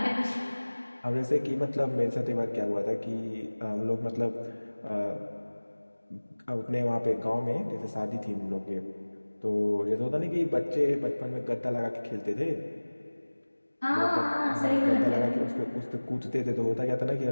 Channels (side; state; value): both; inverted; correlation -1.00